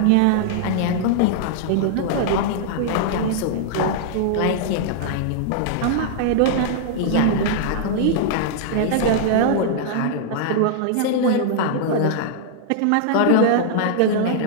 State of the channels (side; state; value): both; different; correlation -0.01